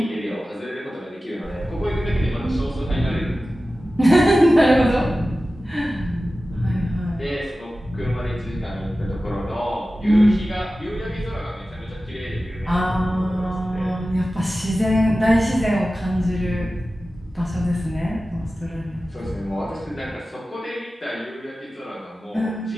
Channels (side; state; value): both; normal; correlation 0.95